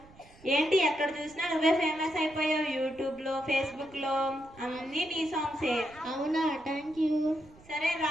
ఏంటి ఎక్కడ చూసినా నువ్వే ఫేమస్ అయిపోయావు. యూట్యూబ్ లో, ఫేస్బుక్ లో అన్ని నీ సాంగ్సే. అవునా, థ్యాంక్ యూ. సరే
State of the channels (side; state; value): right; noise; rumble, 24 dB below the sound